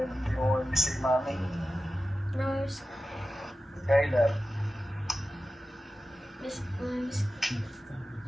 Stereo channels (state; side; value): normal; both; correlation 0.93